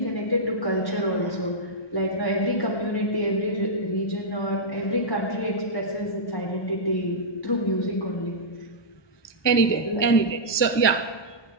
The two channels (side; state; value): right; late; 1.2 ms